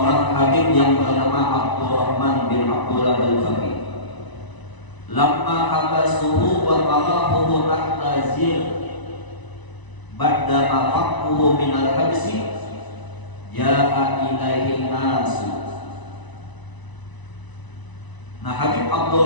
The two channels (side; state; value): right; late; 1.0 ms